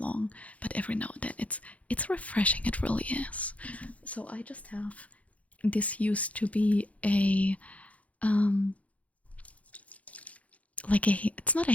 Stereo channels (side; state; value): right; late; 0.067 ms